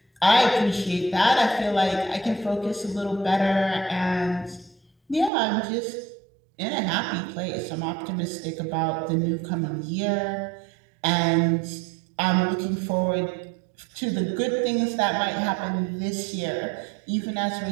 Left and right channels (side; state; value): left; drops out; at 5.3 s